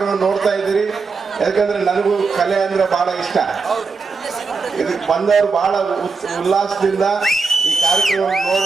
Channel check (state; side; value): quieter; left; 4.6 dB